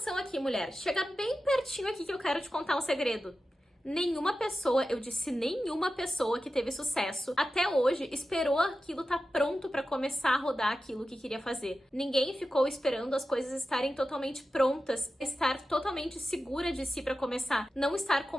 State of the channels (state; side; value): normal; both; correlation 0.93